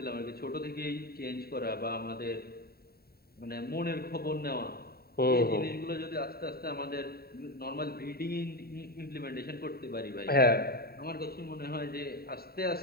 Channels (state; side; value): late; right; 0.45 ms